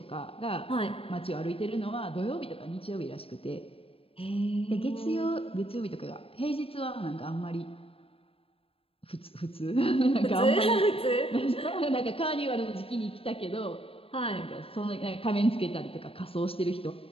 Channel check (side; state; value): right; late; 0.27 ms